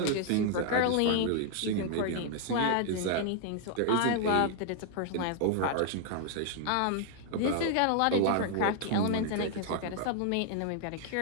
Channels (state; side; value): different; both; correlation 0.00